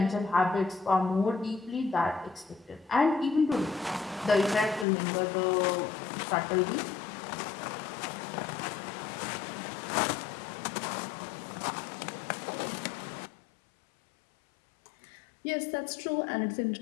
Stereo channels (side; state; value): right; drops out; at 4.9 s